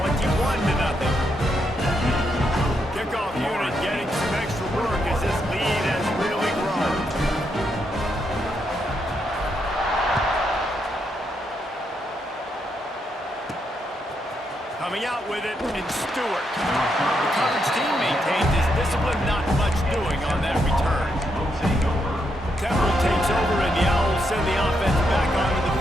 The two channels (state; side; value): normal; both; correlation 0.80